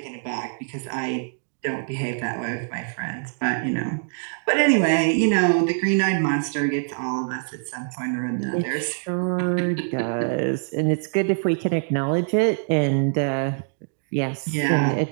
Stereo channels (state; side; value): silent; left; digital silence